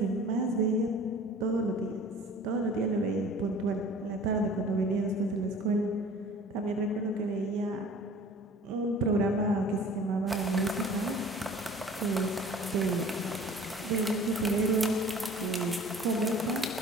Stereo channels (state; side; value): normal; both; correlation 0.46